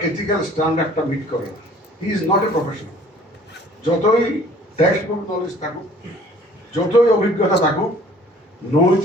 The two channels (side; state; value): both; normal; correlation 0.53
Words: এথিক্যাল স্ট্যান্ডার্ডটা মিট করে না। He is not a professional. যতই টেক্সট বুক নলেজ থাকুক, যতই অভিজ্ঞতা থাকুক,